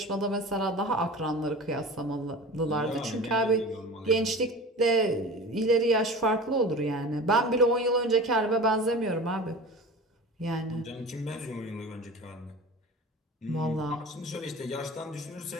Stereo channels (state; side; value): normal; both; correlation 0.35